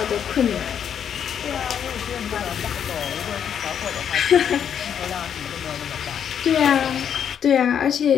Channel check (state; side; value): quieter; right; 8.4 dB